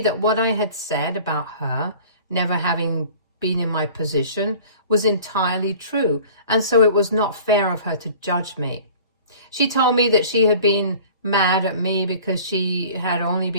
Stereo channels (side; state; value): both; inverted; correlation -0.45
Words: that what I had said about her never having been in my position was entirely true, and so it was not fair of her to judge me. She told me that she had been mad at me because she had only